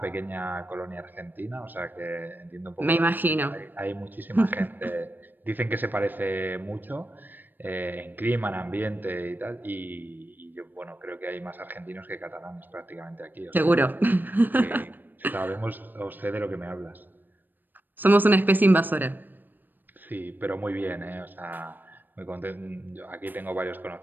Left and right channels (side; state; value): left; late; 0.090 ms